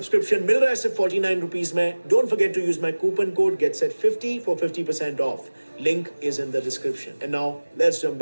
मिल रहा है सिर्फ 49 रुपीज में। Don't forget to use my coupon code GetSet50 for 50% off. Link is in the description. And now let's jump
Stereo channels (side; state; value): both; inverted; correlation -1.00